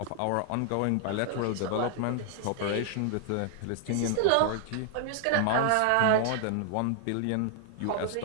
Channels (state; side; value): different; both; correlation 0.00